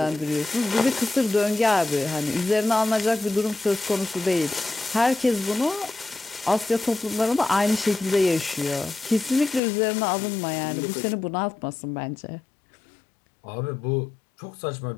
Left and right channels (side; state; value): right; drops out; at 9.6 s